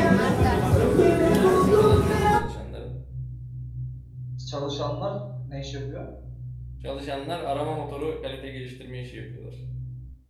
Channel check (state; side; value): identical; both; correlation 1.00